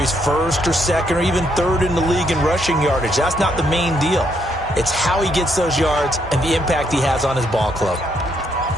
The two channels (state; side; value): normal; both; correlation 0.74